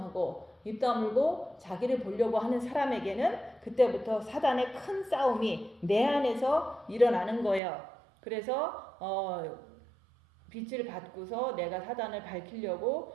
입 다물고 자기를 보려고 하는 사람에게는 그때부터 사단의 큰 싸움이 내 안에서 일어나는 거예요. 그래서 빛을 받고서 내가 사단을 밝히려고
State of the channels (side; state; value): left; drops out; at 7.6 s